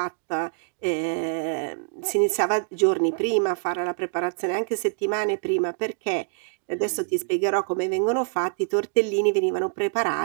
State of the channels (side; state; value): left; silent; digital silence